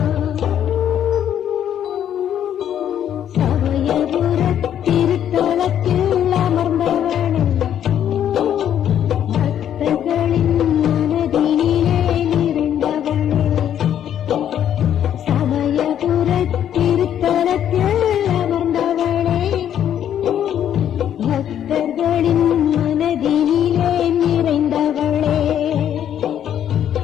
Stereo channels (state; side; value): quieter; right; 10.0 dB